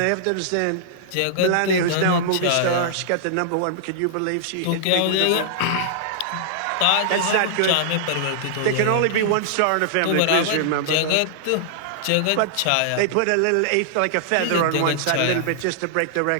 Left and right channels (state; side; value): different; both; correlation -0.01